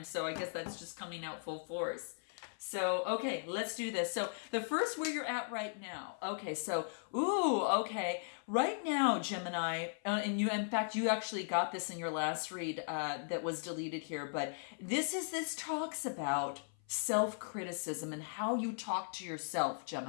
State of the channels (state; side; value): silent; right; 53 dB below the other